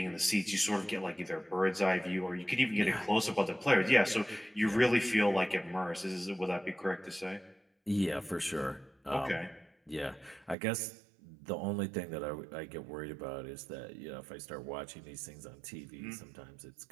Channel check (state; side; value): drops out; left; at 10.6 s